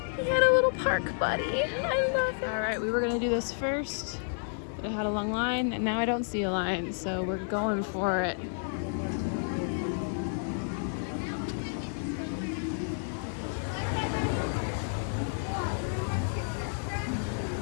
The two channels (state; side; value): silent; right; digital silence